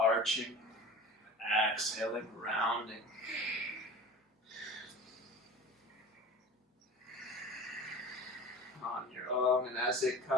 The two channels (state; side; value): normal; both; correlation 0.37